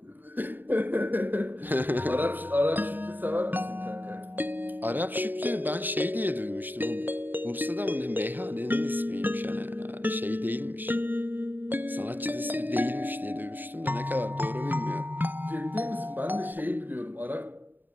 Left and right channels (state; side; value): late; left; 0.090 ms